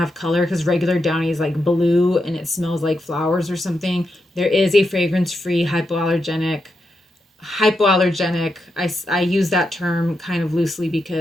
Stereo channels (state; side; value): normal; both; correlation 0.85